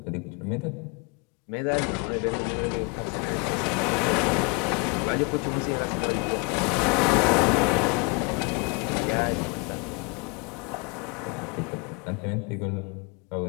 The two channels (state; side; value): quieter; right; 31.2 dB